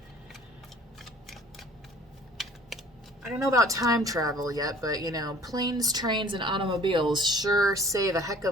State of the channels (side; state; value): both; normal; correlation 0.51